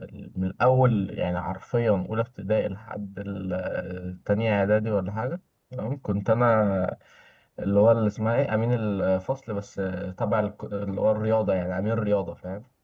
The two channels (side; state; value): both; identical; correlation 1.00